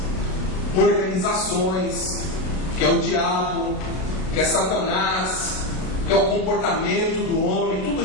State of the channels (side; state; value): right; late; 32 ms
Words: organizações, que é o diabo, que é Satanás, que é o comportamento do homem, tudo